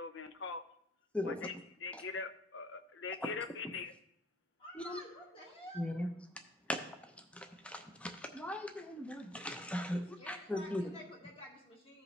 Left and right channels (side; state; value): both; normal; correlation 0.59